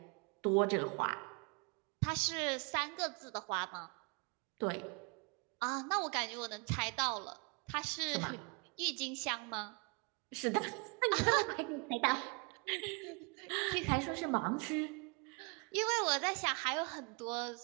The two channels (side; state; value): left; quieter; 32.0 dB